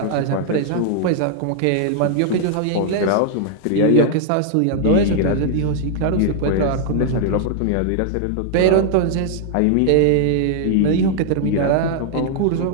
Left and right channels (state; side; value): different; both; correlation -0.01